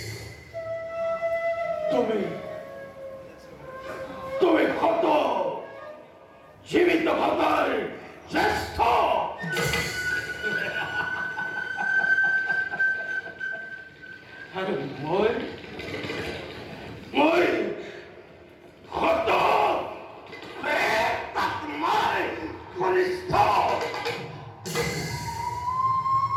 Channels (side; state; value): both; identical; correlation 1.00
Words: তুমি তুমি কত জীবিত ভাতার শ্রেষ্ঠ আর মই কত প্রেতাত্মার কনিষ্ঠ